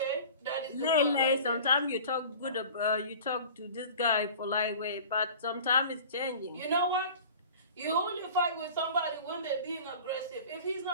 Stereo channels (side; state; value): both; inverted; correlation -0.41